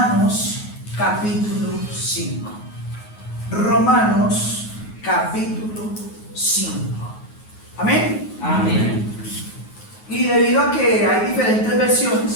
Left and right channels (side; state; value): right; late; 9.4 ms